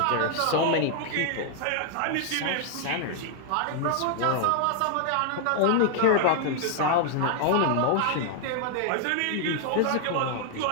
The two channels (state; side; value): different; both; correlation 0.00